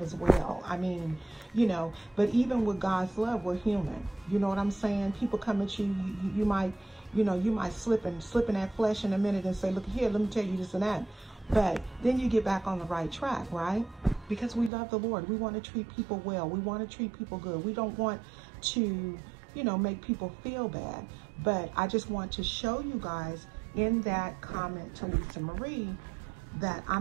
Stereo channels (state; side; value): drops out; left; at 14.7 s